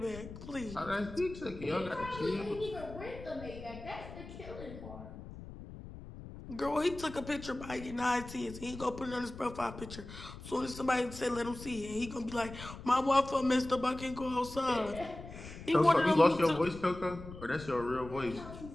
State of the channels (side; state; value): left; noise; rumble, 13 dB below the sound